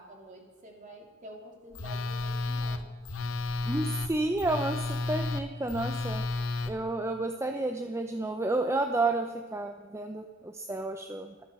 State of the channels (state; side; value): normal; both; correlation 0.70